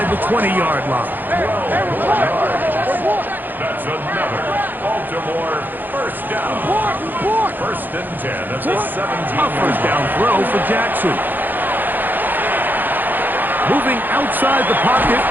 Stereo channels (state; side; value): late; left; 0.087 ms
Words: the 20-yard line. That's another Baltimore first down. First and 10 at the 17. A first down throw for Jackson. Moving outside the pocket.